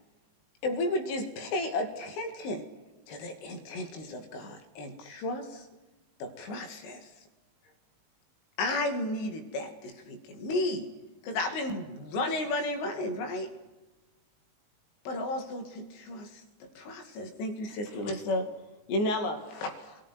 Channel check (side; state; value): right; late; 19 ms